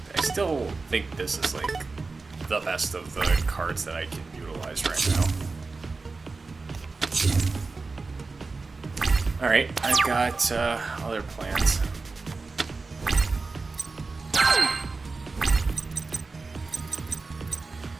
I still think this is like the best of the cards that I can utilize right now. Alright, I've got other plans.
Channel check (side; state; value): left; quieter; 4.0 dB